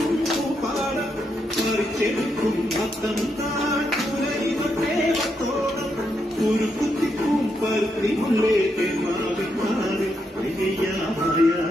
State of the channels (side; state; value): both; normal; correlation 0.81